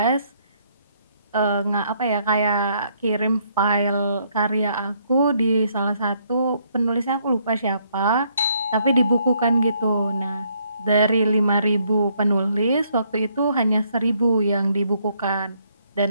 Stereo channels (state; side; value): inverted; both; correlation -0.70